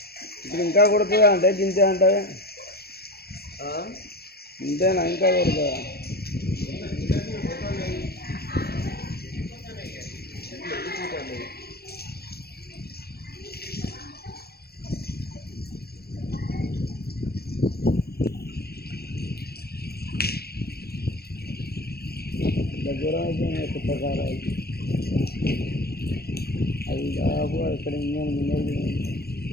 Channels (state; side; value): late; right; 0.46 ms